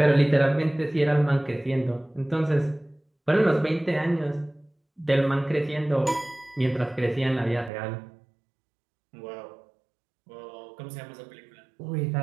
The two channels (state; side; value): drops out; left; at 7.7 s